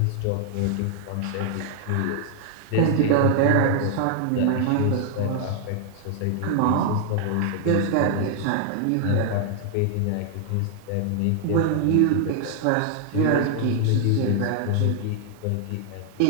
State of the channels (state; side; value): different; both; correlation 0.00